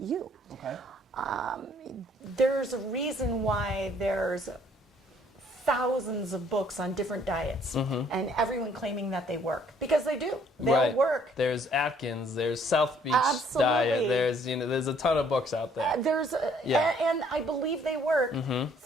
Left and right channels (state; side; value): normal; both; correlation 0.62